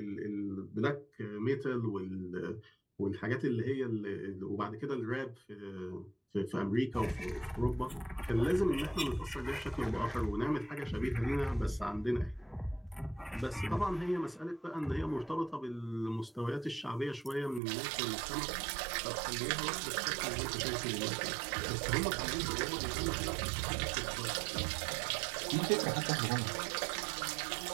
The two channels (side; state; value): left; drops out; at 17.6 s